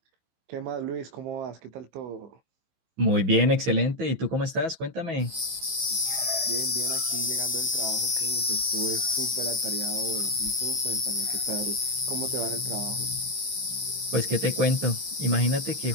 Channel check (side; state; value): left; late; 15 ms